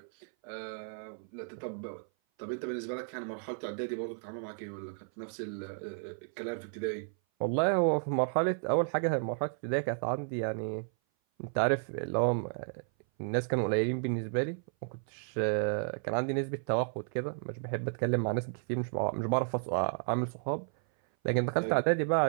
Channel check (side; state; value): left; silent; 56 dB below the other